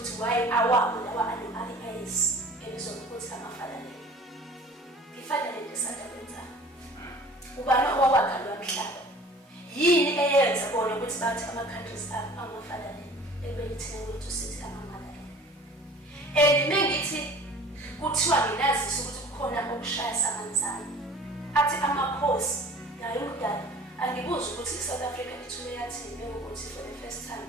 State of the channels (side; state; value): both; normal; correlation 0.46